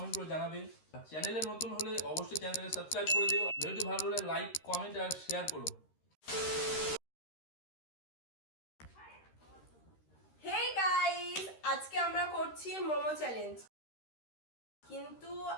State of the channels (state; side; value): late; right; 13 ms